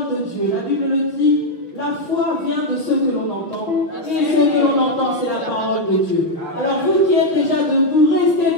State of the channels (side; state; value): right; late; 5.8 ms